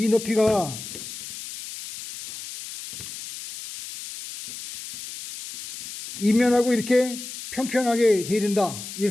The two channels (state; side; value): noise; left; hiss, 11 dB below the sound